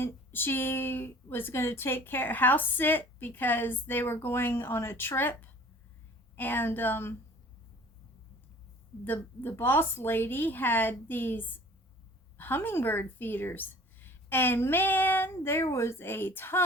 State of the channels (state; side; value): normal; both; correlation 0.48